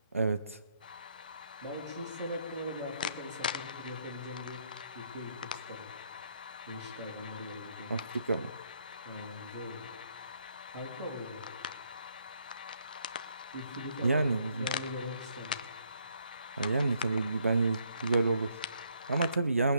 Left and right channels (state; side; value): inverted; both; correlation -0.71